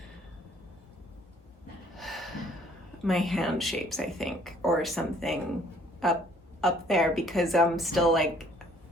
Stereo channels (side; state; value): both; normal; correlation 0.59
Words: my hand shapes, I think, or something up there, because I'm still